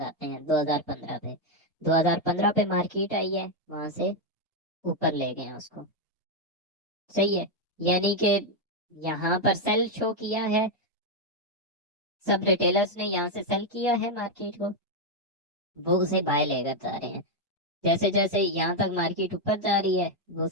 हैं 2015 पे। 2015 पे मार्केट आई है, वहां से ऊपर ले गए हैं उसको, सही है। यानी कि यहाँ पर सेल शो किया है, सब रिटेलर्स ने यहाँ से सेल किया है मार्केट को, वो उसे बाय लेकर जा रहे हैं। जैसे जैसे यहाँ तक मार्केट ऊपर जा रही है, वो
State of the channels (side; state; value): both; normal; correlation 0.03